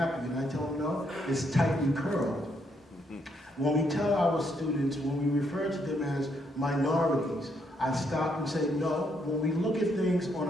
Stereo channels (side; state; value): both; normal; correlation 0.75